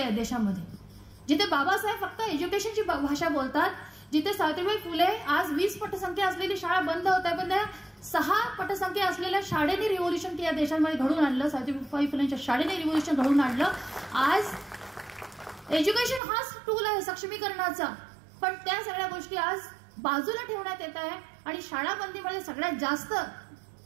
देशामध्ये. जिथे बाबासाहेब फक्त एज्युकेशनची भाषा बोलतात, जिथे सावित्रीबाई फुले आज 20 पटसंख्या असलेली शाळा बंद होत आहे, पण त्या 6 पटसंख्या असलेल्या शाळेने रिव्होल्युशन या देशामध्ये घडवून आणलं. सावित्रीबाई फुलेंच्या शाळेने रिव्होल्युशन घडवून आणलं. आज एज्युकेशन हाच टूल आहे सक्षमीकरणाचा, पण त्या सगळ्या गोष्टी आज बाजूला ठेवण्यात येत आहे. आणि शाळा बंदीमध्ये सगळ्यात जास्त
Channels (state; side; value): drops out; left; at 16.2 s